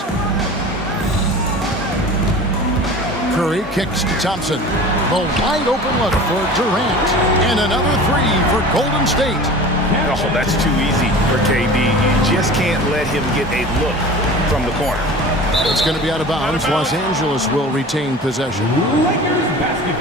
Curry kicks to Thompson. The wide open look for Durant. And another 3 for Golden State. Oh, that's too easy for KD. You just can't let him get a look from the corner. It's going to be out of bounds. Los Angeles will retain possession. Lakers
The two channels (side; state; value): both; normal; correlation 0.38